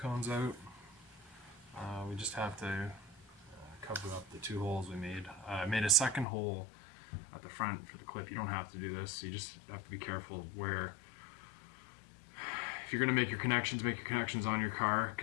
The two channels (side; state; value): right; drops out; at 6.2 s